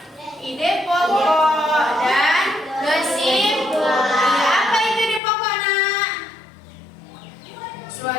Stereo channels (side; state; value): right; drops out; at 5.2 s